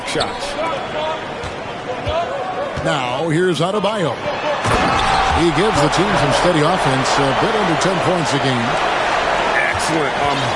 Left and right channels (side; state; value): both; identical; correlation 1.00